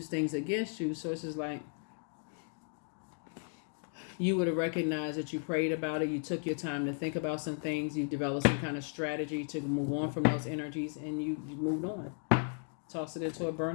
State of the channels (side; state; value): right; silent; 54 dB below the other